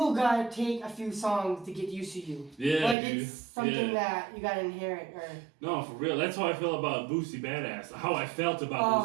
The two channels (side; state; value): left; drops out; at 3.0 s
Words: gotta take a few songs to get used to you. It's something that you gotta inherit. No, for real. That's how I feel about Boosie Badass. How I felt